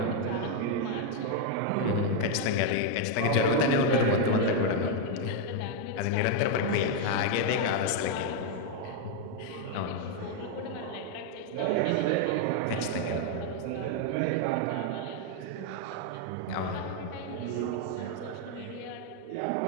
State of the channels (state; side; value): different; both; correlation 0.01